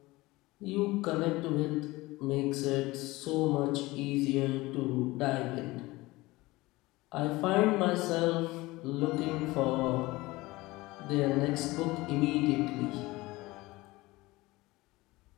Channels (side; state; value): right; quieter; 20.4 dB